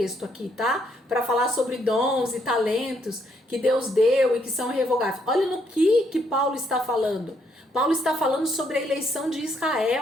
aqui, tá? Para falar sobre dons e talentos que Deus deu e que são irrevogáveis. Olha no que Paulo está falando. Paulo está falando sobre a eleição de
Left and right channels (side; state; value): both; normal; correlation 0.73